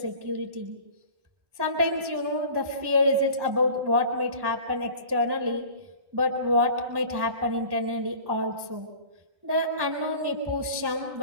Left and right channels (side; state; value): left; late; 1.1 ms